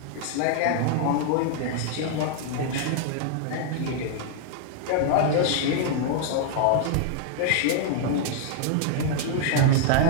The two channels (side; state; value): both; different; correlation 0.00